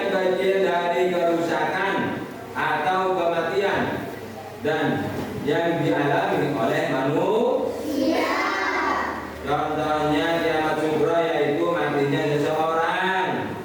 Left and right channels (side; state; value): both; identical; correlation 1.00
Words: kecil dari kerusakan atau kematian dan yang dialami oleh manusia. Contohnya kiamat sughra yaitu matinya seseorang,